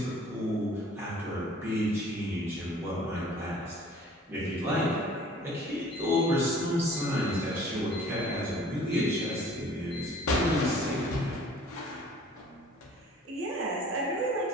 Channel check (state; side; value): normal; both; correlation 0.51